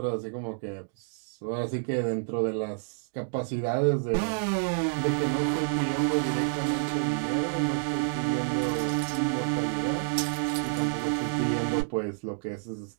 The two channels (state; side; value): silent; left; digital silence